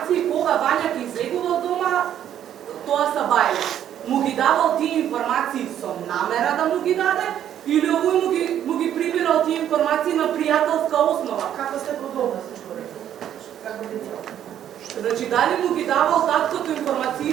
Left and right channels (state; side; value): quieter; left; 10.4 dB